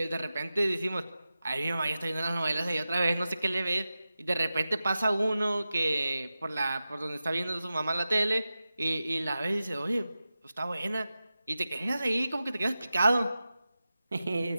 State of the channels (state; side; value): inverted; both; correlation -0.94